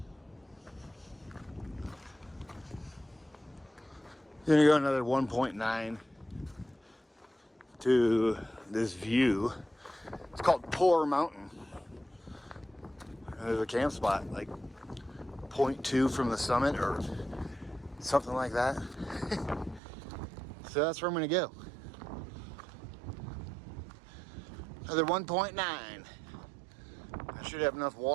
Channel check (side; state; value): left; drops out; at 19.8 s